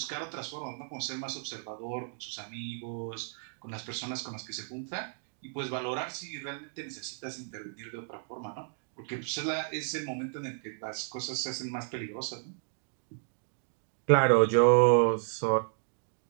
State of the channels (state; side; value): silent; left; digital silence